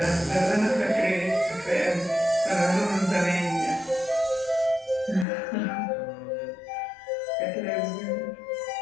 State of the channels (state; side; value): drops out; right; at 5.2 s